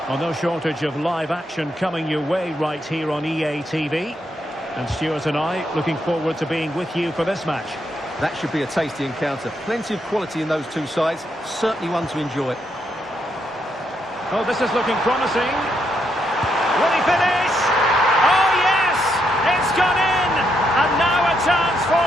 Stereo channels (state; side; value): normal; both; correlation 0.78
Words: Well, no shortage of live action coming your way right here on EA TV. And Stuart and I looking forward to being with you for this match. That should be a tasty encounter. Plenty of quality in those two sides. Certainly one to enjoy. Oh, this is looking promising. Will he finish? Oh, yes! It's gone in! And now a chance for